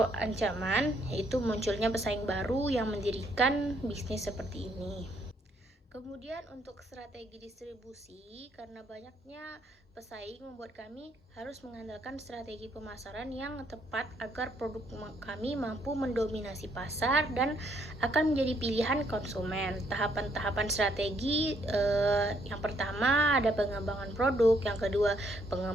ancaman, yaitu munculnya pesaing baru yang mendirikan bisnis seperti ini. Kemudian untuk strategi distribusi, karena banyaknya pesaing membuat kami harus mengandalkan strategi pemasaran yang tepat agar produk kami mampu mendominasi pasar dan akan menjadi pilihan konsumen. Tahapan-tahapan strategi yang pertama ada pengembangan produk, yang kedua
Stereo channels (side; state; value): both; normal; correlation 0.70